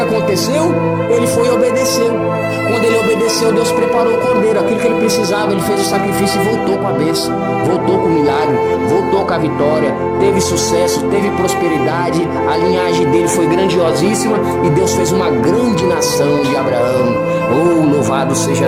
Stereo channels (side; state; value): both; identical; correlation 1.00